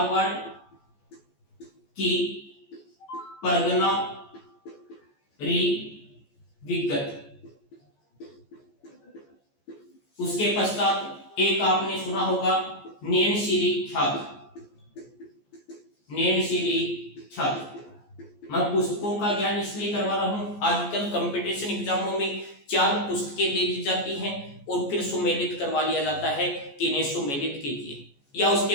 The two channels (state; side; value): late; right; 14 ms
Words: की परगना री विगत। उसके पश्चात एक आपने सुना होगा नैनशिरी ख्यात। नैनशिरी ख्यात। मैं पुस्तकों का ज्ञान इसलिए करवा रहा हूं, आजकल कंपटीशन एग्जामों में 4 पुस्तकें दे दी जाती हैं और फिर सुमेलित करवा लिया जाता है कि इन्हें सुमेलित कीजिए, या उसके